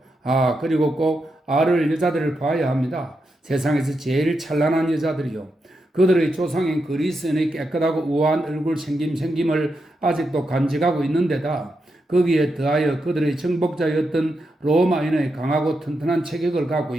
그리고 꼭 아를 여자들을 봐야 합니다. 세상에서 제일 찬란한 여자들이요. 그들의 조상인 그리스인의 깨끗하고 우아한 얼굴 생김을 아직도 간직하고 있는데다 거기에 더하여 그들의 정복자였던 로마인의 강하고 튼튼한 체격을 갖고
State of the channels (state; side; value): normal; both; correlation 0.85